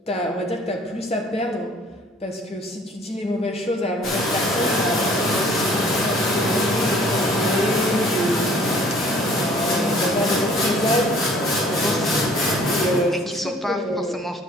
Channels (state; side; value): normal; both; correlation 0.54